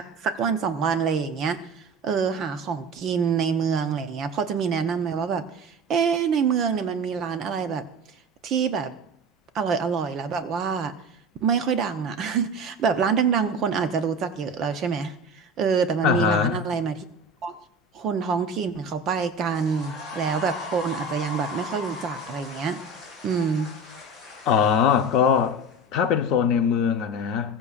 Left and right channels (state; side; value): normal; both; correlation 0.32